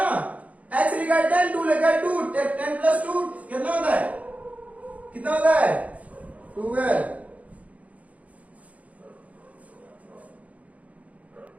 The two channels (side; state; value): left; late; 0.069 ms